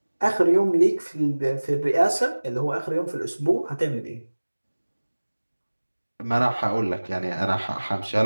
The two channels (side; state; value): both; inverted; correlation -1.00